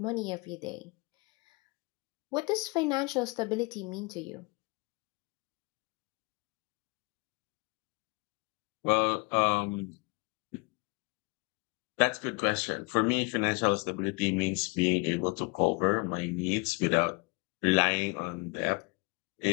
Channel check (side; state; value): right; quieter; 29.1 dB